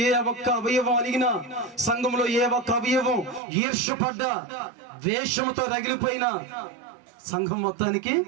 ఏ ఒక్క అవయవం అలిగినా, సంఘంలో ఏ ఒక్క అవయవం ఈర్ష్యపడ్డ వేషముతో రగిలిపోయిన సంఘం మొత్తానికి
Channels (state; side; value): drops out; left; at 3.4 s